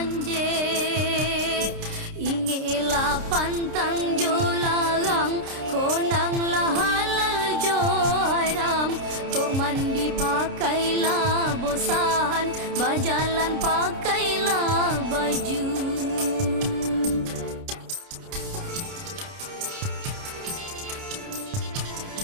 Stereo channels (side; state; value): left; late; 29 ms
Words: Ingelah pantang jo larang, konang lah halal jo haram. Kok mandi pakailah bosan, berjalan pakailah baju.